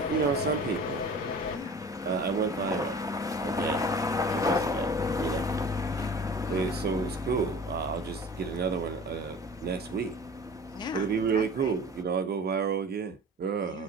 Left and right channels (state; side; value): normal; both; correlation 0.41